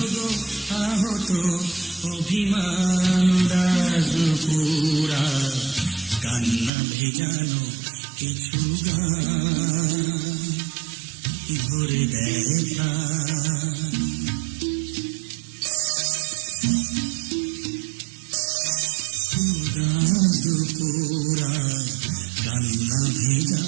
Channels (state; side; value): drops out; left; at 6.7 s